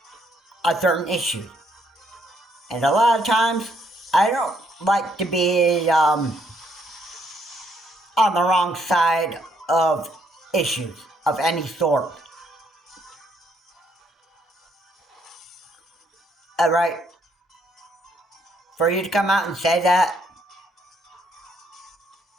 on certain issues. And a lot of times, I don't like to be on the wrong side of issues of any sort. Alright? For you to come out and say that,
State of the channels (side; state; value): both; normal; correlation 0.71